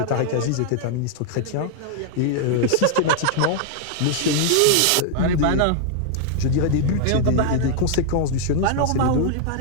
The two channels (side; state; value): both; different; correlation 0.00